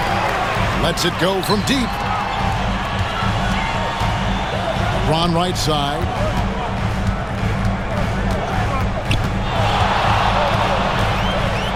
Lets it go from deep. LeBron right side.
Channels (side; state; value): both; identical; correlation 1.00